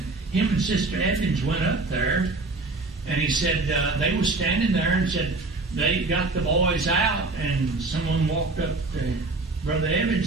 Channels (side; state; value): left; quieter; 3.4 dB